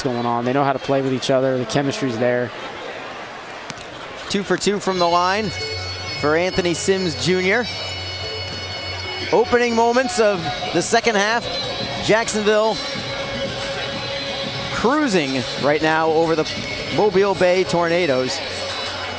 going on. They know how to play with each other. The chemistry's there. 2 for 2 from the line for Anthony Sims Jr. Opening moments of the second half. Jacksonville cruising right now over the Mobile Bay Tornadoes.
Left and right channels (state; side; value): identical; both; correlation 1.00